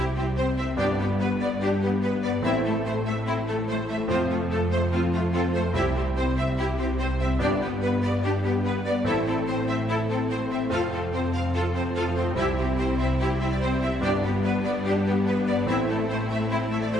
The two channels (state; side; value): normal; both; correlation 0.74